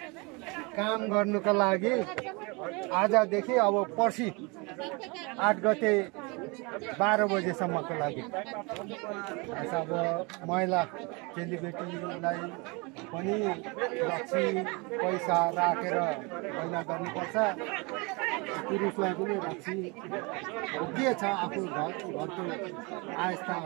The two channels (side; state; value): left; quieter; 28.4 dB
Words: काम गर्नुको लागि आजदेखि अब पर्सि 8 गते 12 बजेसम्मको लागि अब महिला चेलीबेटीलाई पनि रक्सी पैसा राखेर मैला गर्नुपर्छ, पुरुषलाई पनि रक्सी के छ आफू घरको आयस्ता